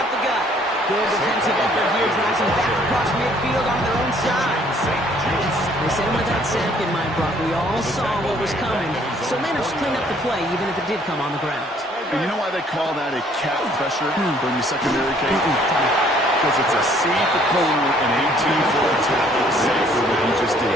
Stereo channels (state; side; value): normal; both; correlation 0.61